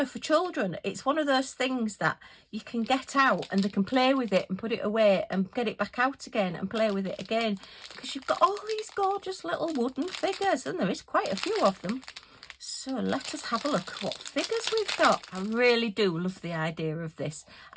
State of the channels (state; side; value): identical; both; correlation 1.00